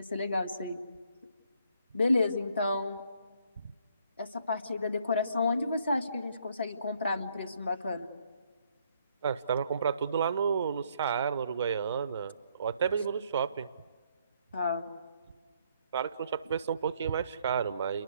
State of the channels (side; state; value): both; inverted; correlation -0.69